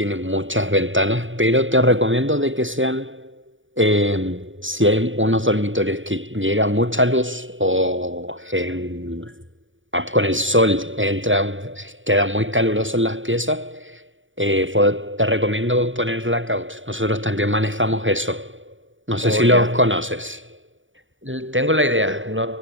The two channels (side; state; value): left; late; 0.56 ms